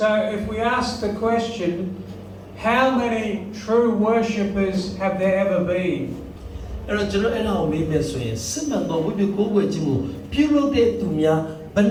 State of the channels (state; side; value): identical; both; correlation 1.00